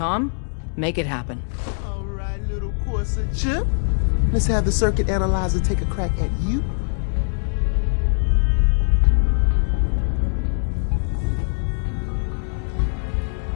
make it happen. All right, little courser chip. Let's have the circuit analyzer take a crack at you.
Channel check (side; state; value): right; silent; 64 dB below the other